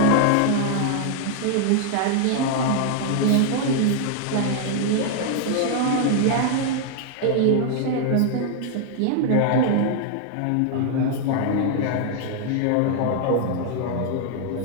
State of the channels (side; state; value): both; different; correlation 0.00